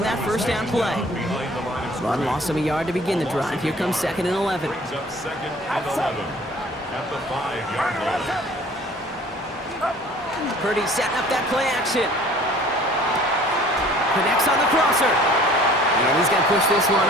that 1st down play. Run loss of a yard to begin the drive. Here comes 2nd and 11. Brings up 2nd and 11 at the 5-yard line. Purdy setting up that play action. Connects on the crosser. And he's going to push this one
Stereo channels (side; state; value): both; normal; correlation 0.51